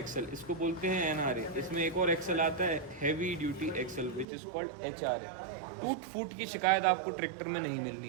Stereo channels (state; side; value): drops out; left; at 4.2 s